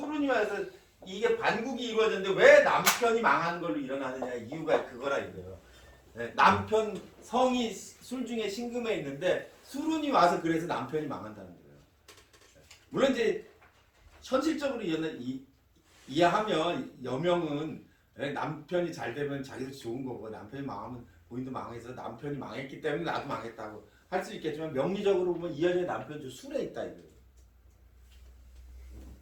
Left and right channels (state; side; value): identical; both; correlation 1.00